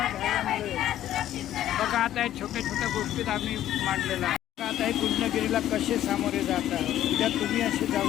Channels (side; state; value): right; quieter; 12.4 dB